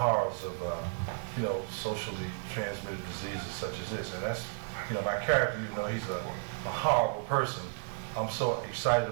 of, socially transmitted diseases such as this. And that's, my character, even though he's a horrible person, I'm so excited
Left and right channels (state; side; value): silent; left; digital silence